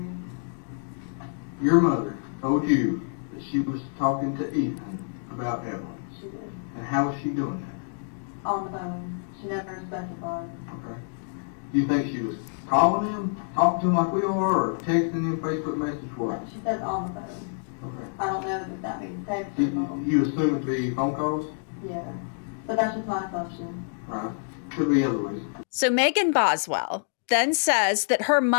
Your mother told you that she was talking to Ethan about Evelyn. She did. And how was she doing that? On the phone. She never specified. Okay. Do you think she was calling him, talking to him like we are, or texting him Facebook message, what? She says on the phone. Okay. I don't know if that means text or You, call. you assume it to be phone calls? Yeah. But that's just my assumption. Right. Could be other ways. So Megan Boswell then says that her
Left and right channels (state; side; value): silent; right; digital silence